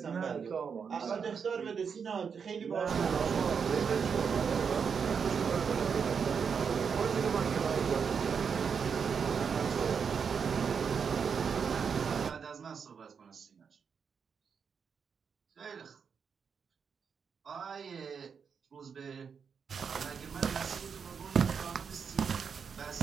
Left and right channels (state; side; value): quieter; left; 6.4 dB